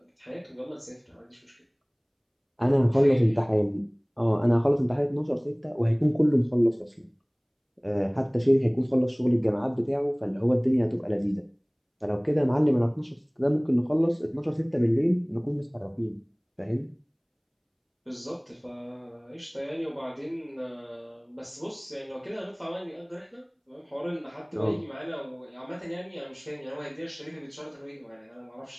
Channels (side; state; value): both; identical; correlation 1.00